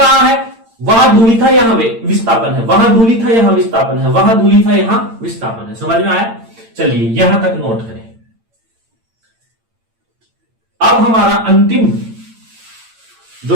है, वहां दूरी था यहां विस्थापन है, वहां दूरी था यहां विस्थापन है, वहां दूरी था यहां विस्थापन है। समझ में आया। चलिए यहां तक नोट करें। अब हमारा अंतिम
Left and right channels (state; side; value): late; left; 8.8 ms